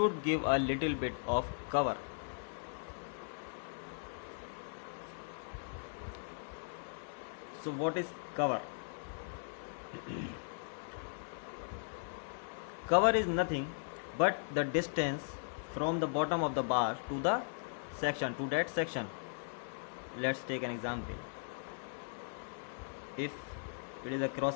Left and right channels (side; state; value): right; silent; 52 dB below the other